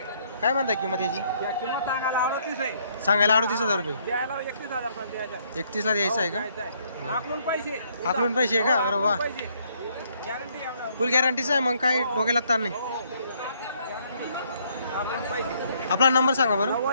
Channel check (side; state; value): both; inverted; correlation -0.68